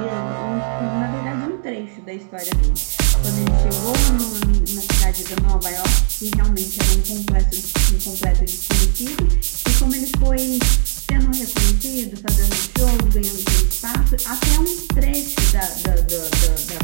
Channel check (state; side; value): silent; left; digital silence